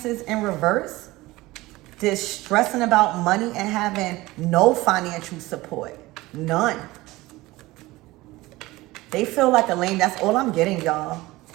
in reverse. This stressing about money and having no financial support. None. They feel like a lame. That's all I'm getting, y'all.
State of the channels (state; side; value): quieter; left; 19.5 dB